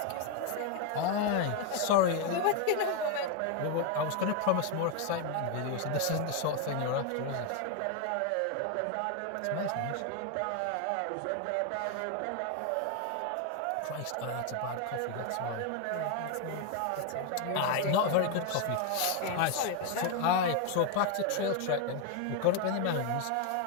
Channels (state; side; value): different; both; correlation 0.01